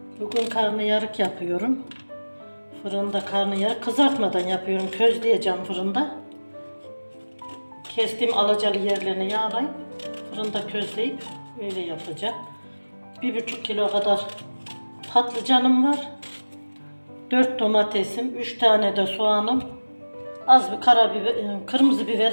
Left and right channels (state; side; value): inverted; both; correlation -1.00